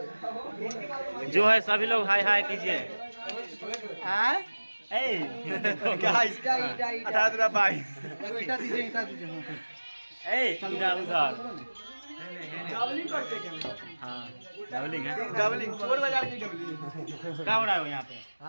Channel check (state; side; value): inverted; both; correlation -1.00